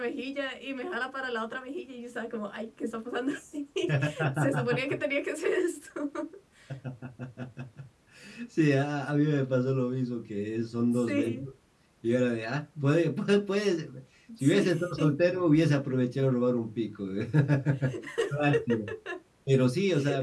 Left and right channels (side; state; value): both; identical; correlation 1.00